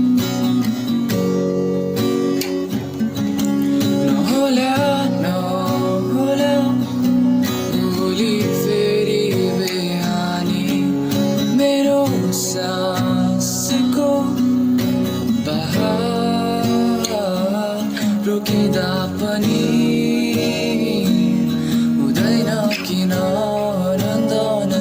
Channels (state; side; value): identical; both; correlation 1.00